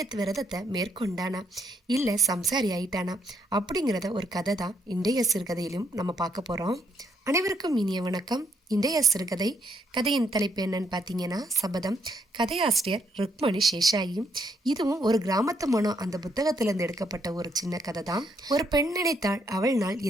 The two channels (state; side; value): normal; both; correlation 0.73